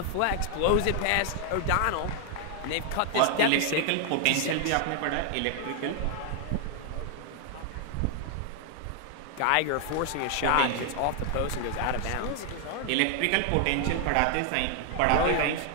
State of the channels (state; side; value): different; both; correlation 0.00